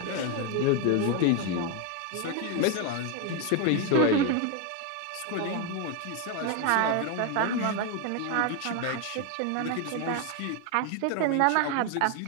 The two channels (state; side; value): different; both; correlation 0.01